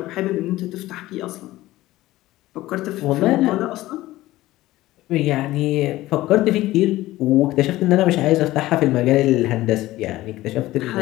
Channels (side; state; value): right; quieter; 16.8 dB